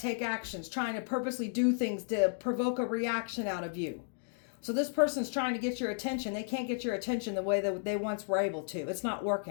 take actions, trying to purposely do things to provoke a reaction out of you. So this person's trying to get your attention. They can't get your attention the way that they once were able to. It's not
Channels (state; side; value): silent; right; digital silence